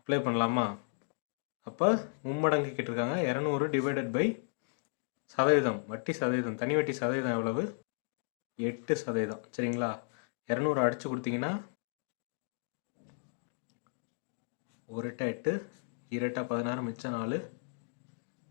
பண்ணலாமா? அப்போ மும்மடங்கு கேட்டிருக்காங்க. 200 டிவைடட் பை சதவீதம், வட்டி சதவீதம், தனி வட்டி சதவீதம் எவ்வளவு? 8%. சரிங்களா? 200 அடித்து கொடுத்தீங்கன்னா 1 8 8, 2 16, மிச்சம் 4,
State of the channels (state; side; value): silent; right; digital silence